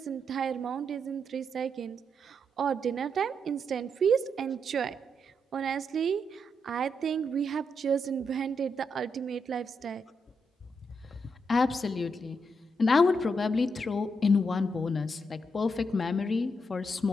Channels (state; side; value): normal; both; correlation 0.81